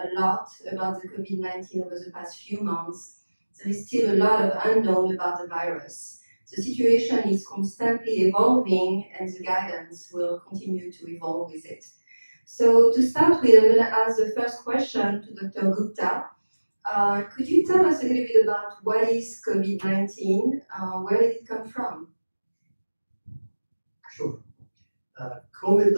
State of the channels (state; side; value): inverted; both; correlation -1.00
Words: lot about the COVID-19 over the past few months, there is still a lot of unknown about the virus. The situation is constantly evolving and the guidance will continue to evolve with it. So to start with, I'm going to ask the first question to Dr. Gupta. Could you tell us a little bit about what is COVID-19? Where did it come from? Sure.